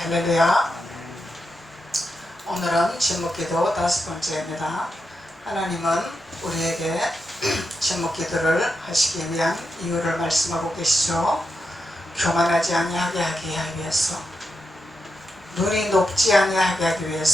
할렐루야. 오늘은 제목기도 5번째입니다. 하나님은 우리에게 제목기도를 하시기 위한 이유를 말씀하고 계시죠. 교만하지 아니하게 하기 위해서, 눈이 높지 아니하게 하기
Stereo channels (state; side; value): normal; both; correlation 0.86